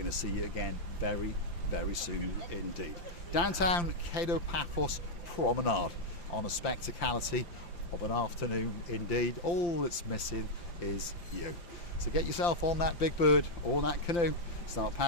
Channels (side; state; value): right; late; 5.8 ms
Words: to see you again very, very soon indeed. Downtown Kato Paphos Promenade on a spectacality of an afternoon indeed. All that's missing is you. So get yourself on that big bird or that canoe, start